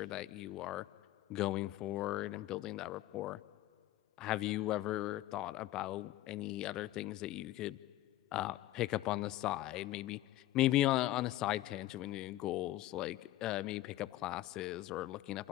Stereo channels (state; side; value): quieter; right; 15.7 dB